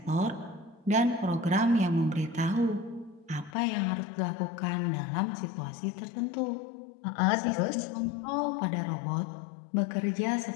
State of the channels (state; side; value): drops out; right; at 3.5 s